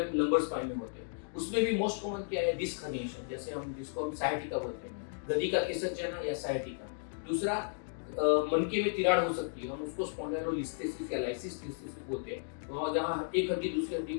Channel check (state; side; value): silent; right; digital silence